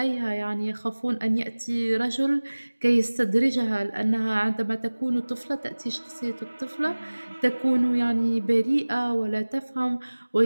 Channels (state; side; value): inverted; both; correlation -1.00